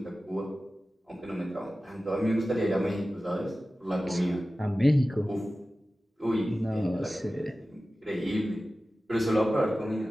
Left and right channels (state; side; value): normal; both; correlation 0.95